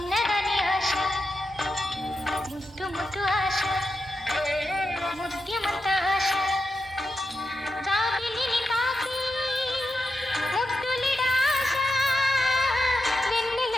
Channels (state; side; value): normal; both; correlation 0.88